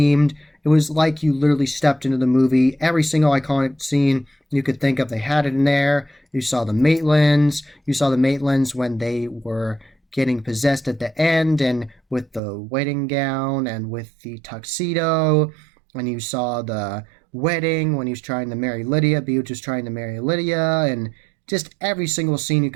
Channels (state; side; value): drops out; left; at 12.4 s